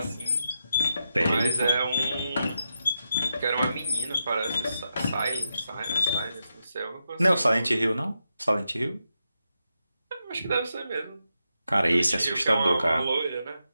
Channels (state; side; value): inverted; both; correlation -0.86